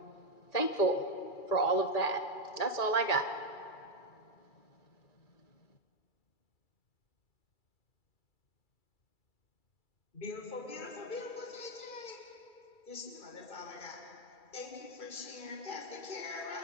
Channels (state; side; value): late; right; 2.3 ms